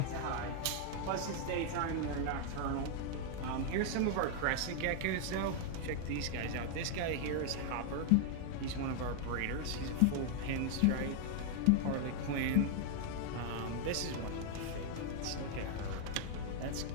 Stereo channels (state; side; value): different; both; correlation 0.00